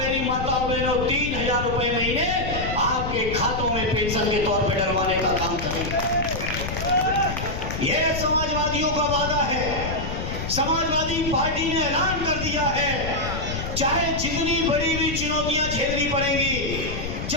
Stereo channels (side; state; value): left; noise; rumble, 5 dB below the sound